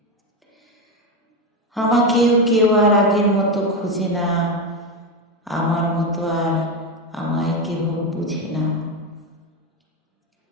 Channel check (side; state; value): both; normal; correlation 0.13